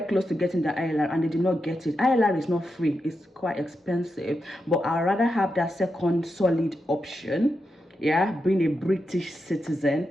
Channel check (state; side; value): normal; both; correlation 0.87